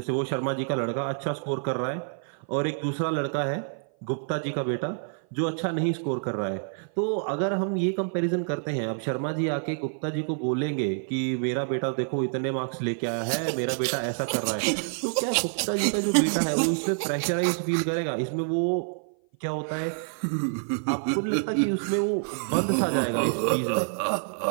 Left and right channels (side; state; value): left; silent; 56 dB below the other